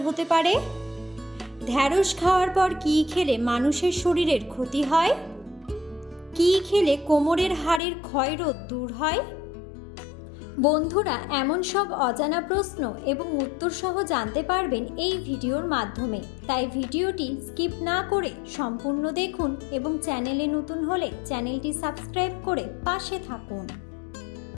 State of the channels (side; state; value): right; drops out; at 7.8 s